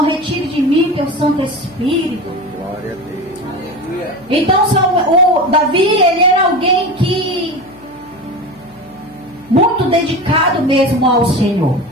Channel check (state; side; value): noise; left; hum, 26 dB below the sound